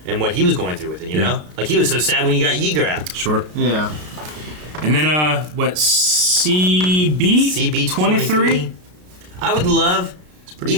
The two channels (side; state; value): left; late; 33 ms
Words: and what he was going through with it, you know? Like, he was so sad when you got Yeager out. Sure. Yeah. And then, CB 23? I would love,